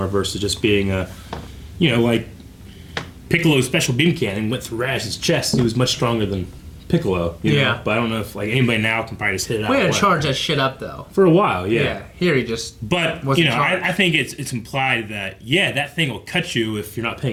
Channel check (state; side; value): identical; both; correlation 1.00